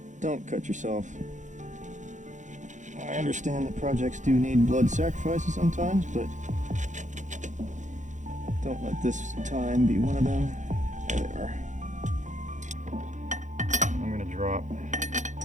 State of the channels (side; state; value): left; late; 0.35 ms